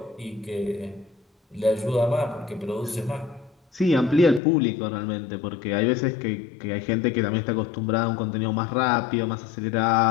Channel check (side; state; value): right; drops out; at 4.4 s